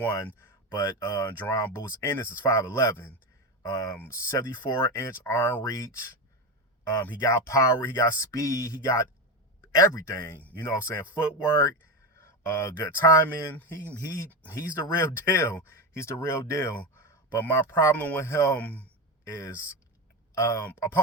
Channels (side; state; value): both; normal; correlation 0.18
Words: but Jaron Bout Ennis is 5'11", 74-inch arm reach. He got power, he got speed, he got everything. You know what I'm saying? Footwork, good timing. He's the real deal. He's the real deal. But my problem with him is